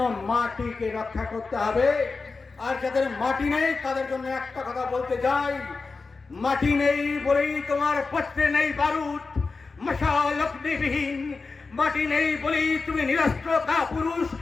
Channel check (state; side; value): quieter; right; 4.2 dB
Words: মাটিকে রক্ষা করতে হবে। আর যাদের মাটি নেই তাদের জন্য একটা কথা বলতে যাই, মাটি নেই বলেই তোমার পত্রে নেই বারুদ, মশাল অগ্নিবিহীন মাটি নেই বলেই তুমি নিরস্ত্র কাপুরুষ